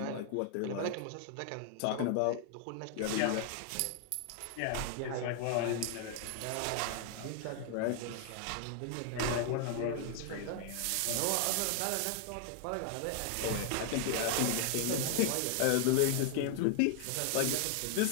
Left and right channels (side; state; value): both; different; correlation 0.00